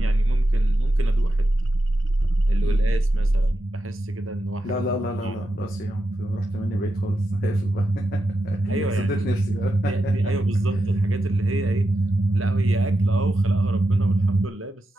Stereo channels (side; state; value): both; normal; correlation 0.88